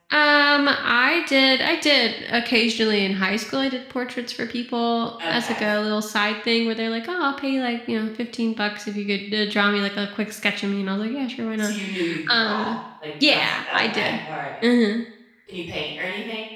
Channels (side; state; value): both; identical; correlation 1.00